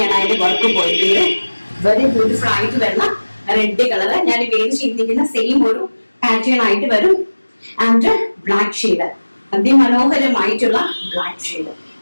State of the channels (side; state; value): both; inverted; correlation -1.00